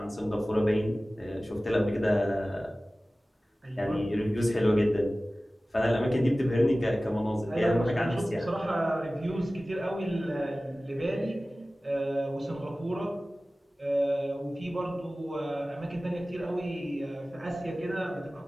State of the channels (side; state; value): both; normal; correlation 0.97